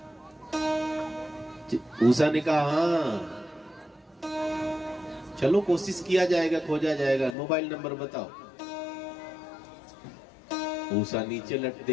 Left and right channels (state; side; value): drops out; right; at 7.3 s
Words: उषा ने कहा हाँ चलो कोशिश किया जाएगा, खोजा जाएगा, मोबाइल नंबर बताओ। उषा नीचे लट